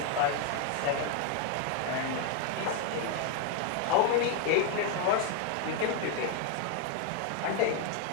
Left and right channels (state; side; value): different; both; correlation 0.01